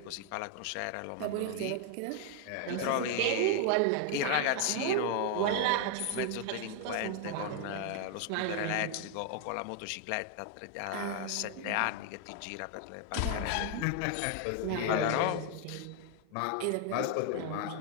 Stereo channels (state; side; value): different; both; correlation 0.00